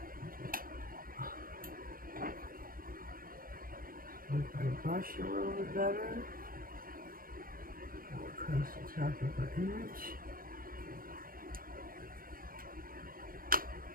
If I brush a little bit better, go across the top of our image.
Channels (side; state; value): left; late; 0.41 ms